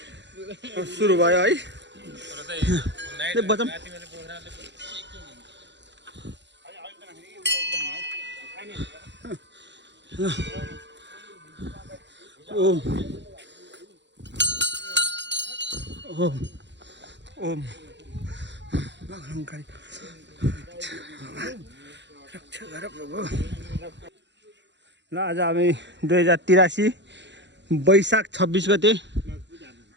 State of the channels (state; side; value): late; left; 0.52 ms